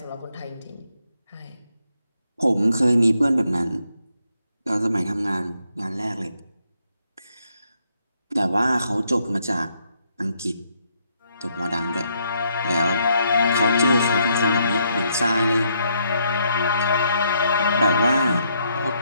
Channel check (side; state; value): both; inverted; correlation -0.74